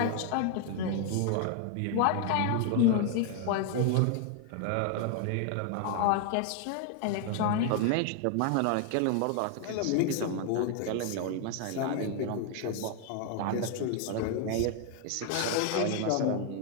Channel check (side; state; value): both; different; correlation 0.00